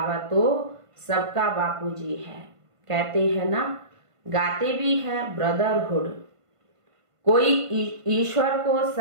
तो सबका बापूजी है। कहते हैं ना, गाते भी हैं ब्रदरहुड। कोई ईश्वर को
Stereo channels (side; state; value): left; late; 1.5 ms